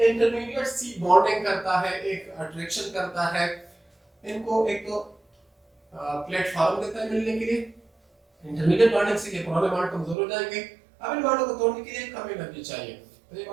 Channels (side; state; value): left; drops out; at 10.2 s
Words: इंटरमीडिएट सी बॉन्डिंग करता है, एक अट्रैक्शन करता है, इनको एक तो प्लेटफॉर्म देता है मिलने के लिए। इंटरमीडिएट बॉन्डिंग से ये पुराने बॉन्ड कमजोर हो जाएंगे, अब इन बॉन्डों को तोड़ने के लिए कम एनर्जी चाहिए, तो ये